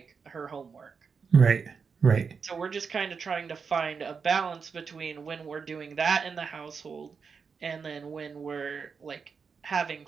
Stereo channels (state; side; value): quieter; left; 5.7 dB